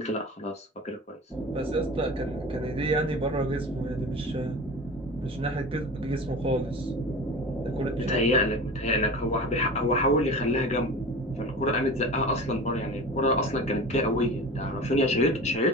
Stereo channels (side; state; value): both; normal; correlation 0.34